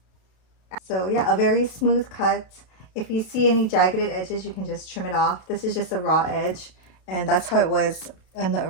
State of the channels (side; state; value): right; late; 32 ms